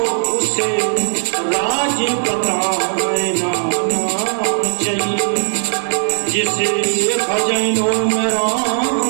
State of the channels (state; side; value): silent; left; digital silence